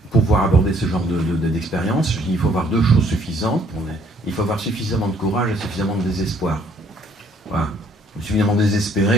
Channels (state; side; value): normal; both; correlation 0.63